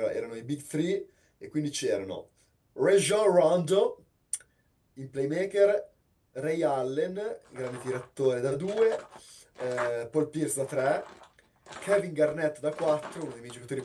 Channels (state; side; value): identical; both; correlation 1.00